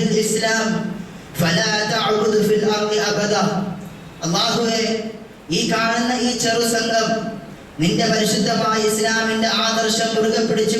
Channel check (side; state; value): both; identical; correlation 1.00